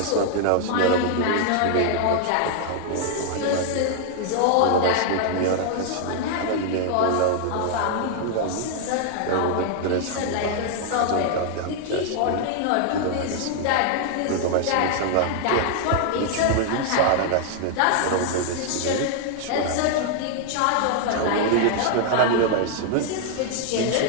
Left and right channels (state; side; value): different; both; correlation 0.00